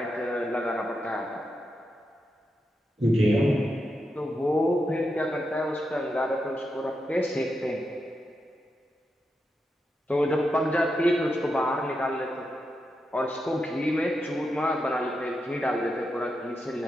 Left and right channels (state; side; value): normal; both; correlation 0.86